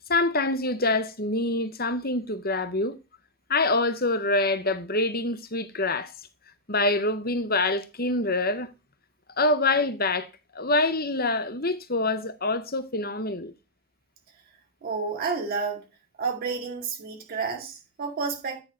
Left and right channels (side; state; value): both; normal; correlation -0.12